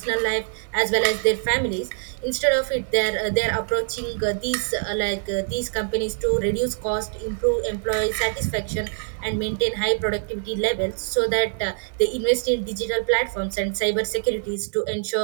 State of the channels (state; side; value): silent; left; 62 dB below the other